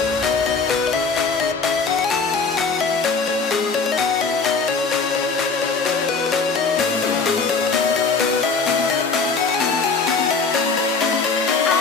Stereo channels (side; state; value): right; quieter; 4.7 dB